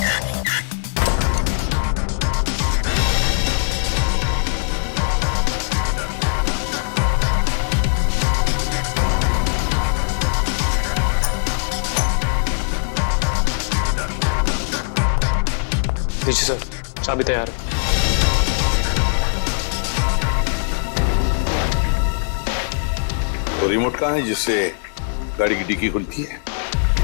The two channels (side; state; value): right; silent; digital silence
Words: जी सर, चाबी तैयार है। तो रिमोट कहाँ है जिससे गाड़ी की डिक्की खुलती है?